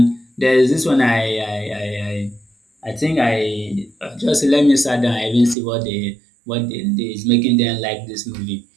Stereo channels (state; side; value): drops out; left; at 5.6 s